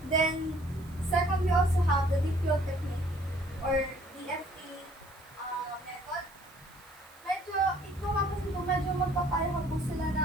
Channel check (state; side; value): noise; right; hiss, 25 dB below the sound